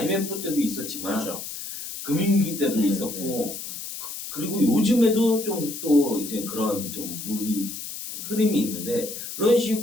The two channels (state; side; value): noise; left; hiss, 8 dB below the sound